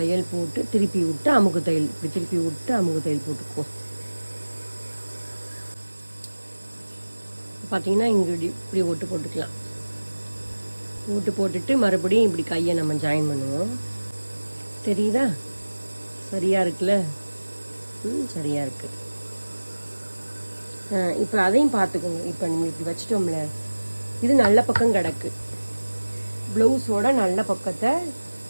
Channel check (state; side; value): inverted; both; correlation -1.00